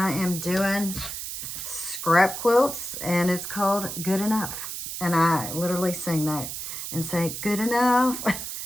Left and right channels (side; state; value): right; noise; hiss, 6 dB below the sound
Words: am doing scrap quilts, and it's called Good Enough. And I literally sing that and say, good enough,